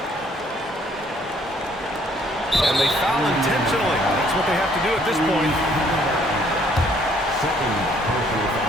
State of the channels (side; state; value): both; normal; correlation 0.63